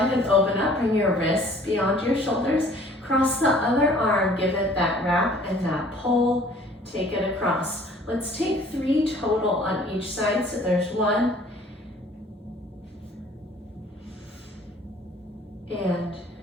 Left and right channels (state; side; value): normal; both; correlation 0.54